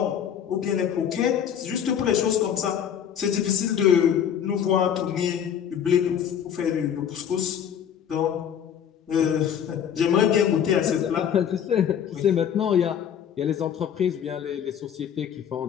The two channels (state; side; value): quieter; right; 8.7 dB